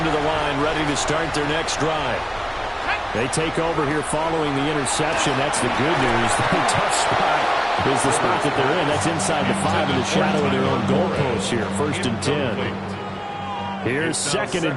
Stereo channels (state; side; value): identical; both; correlation 1.00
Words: to the line ready to start their next drive. They take over here following the interception. That's the good news. The tough spot is the spot that they're in. That's inside the 5 in the shadow of their own goalpost here. 1st and 10. Here's 2nd